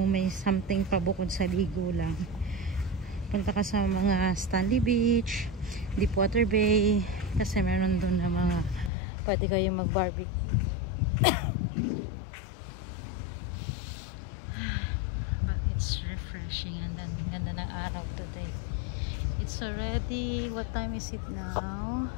may something pa bukod sa ligo lang, punta ka sa mga Stanley Beach, Deepwater Bay, kasi meron doon na mga pwede kayong mag barbecue. But it's refreshing and then ganda ng araw today. It's already, what time is it now?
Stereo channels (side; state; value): right; drops out; at 8.9 s